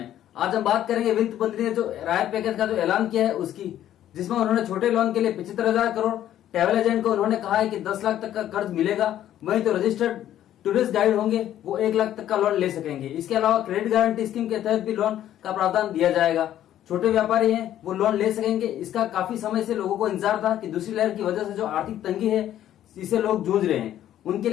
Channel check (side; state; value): right; quieter; 11.8 dB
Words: आज हम बात करेंगे वित्त मंत्री ने जो राहत पैकेज का जो ऐलान किया है उसकी, जिसमें उन्होंने छोटे लोन के लिए 75,000 करोड़, ट्रैवल एजेंट को उन्होंने कहा है कि 10 लाख तक का कर्ज मिलेगा, वहीं तो रजिस्टर्ड टूरिस्ट गाइड होंगे वो 1 लाख तक का लोन ले सकेंगे। इसके अलावा क्रेडिट गारंटी स्कीम के तहत भी लोन का प्रावधान दिया जाएगा। छोटे व्यापारी हैं वो लोन ले सकेंगे। इसका काफी समय से लोगों को इंतजार था कि दूसरी लहर की वजह से जो आर्थिक तंगी है इसे लोग जूझ रहे हैं, उनके